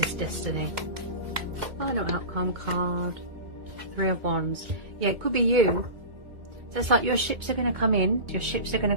destiny. Final outcome card, Three of Wands. Yeah, it could be you. So it's like your ships are going to come in, your ships are going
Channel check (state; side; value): late; left; 2.2 ms